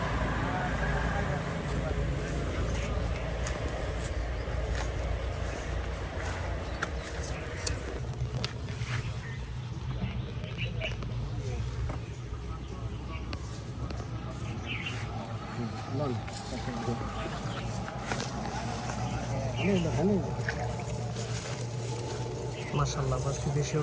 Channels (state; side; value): identical; both; correlation 1.00